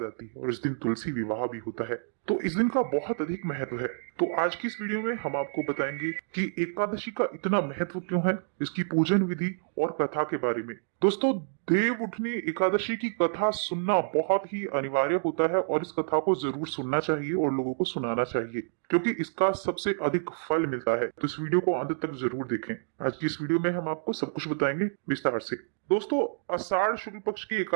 आती है और इस दिन तुलसी विवाह भी होता है, तो इस दिन का बहुत अधिक महत्व है। तो आज की इस वीडियो में हम आपको बताएंगे कि एकादशी का इतना महत्व क्यों है, इसकी पूजन विधि और कथा के बारे में। दोस्तों, देव उठनी एकादशी की कथा सुनना बहुत ही अनिवार्य होता है और इस कथा को जरूर सुनना चाहिए और लोगों को सुनाना चाहिए, क्योंकि इसका सबसे अधिक फल मिलता है। तो इस वीडियो को अंत तक जरूर देखें। आज की इस वीडियो में हम आपको सब कुछ बताएंगे विस्तार से। दोस्तों, आषाढ़ शुक्ल पक्ष की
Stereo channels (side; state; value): left; silent; digital silence